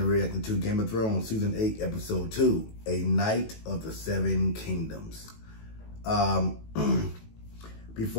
and reacting to Game of Thrones Season 8, Episode 2, A Night of the Seven Kingdoms.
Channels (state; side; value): late; right; 18 ms